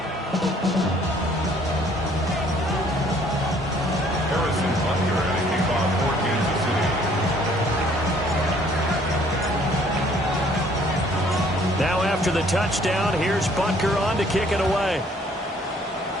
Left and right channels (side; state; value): both; normal; correlation 0.60